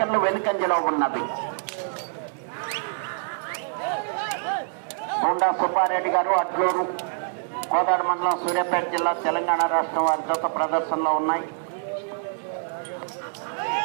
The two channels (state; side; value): silent; left; digital silence